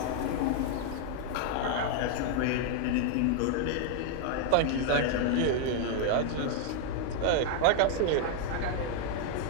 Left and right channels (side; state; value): both; different; correlation 0.00